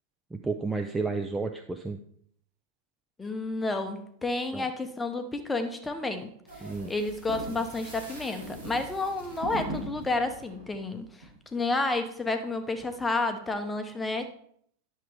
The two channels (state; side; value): normal; both; correlation 0.67